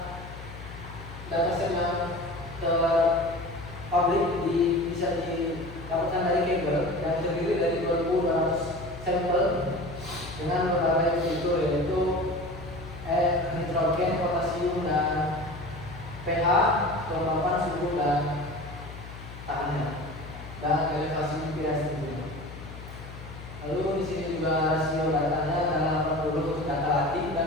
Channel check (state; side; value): noise; left; hum, 13 dB below the sound